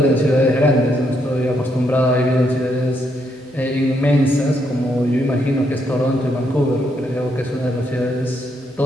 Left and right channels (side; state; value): both; normal; correlation 0.76